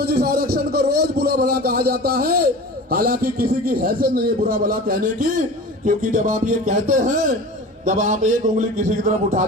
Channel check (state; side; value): normal; both; correlation 0.36